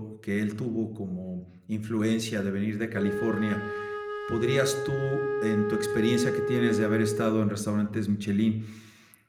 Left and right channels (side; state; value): both; identical; correlation 1.00